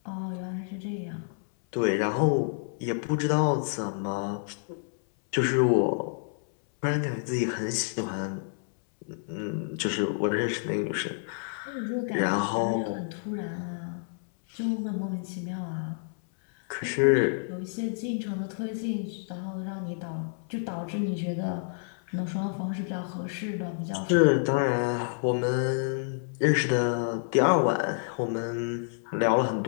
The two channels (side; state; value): right; silent; 59 dB below the other